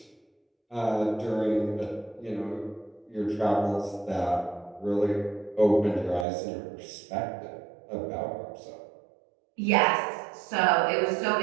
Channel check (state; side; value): drops out; left; at 6.2 s